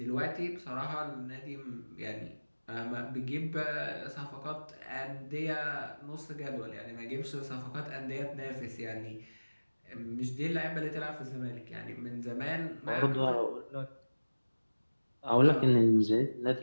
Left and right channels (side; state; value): both; inverted; correlation -1.00